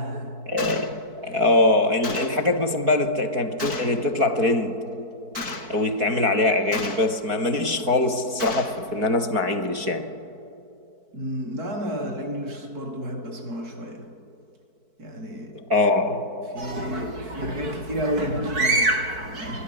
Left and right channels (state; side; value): late; left; 4.6 ms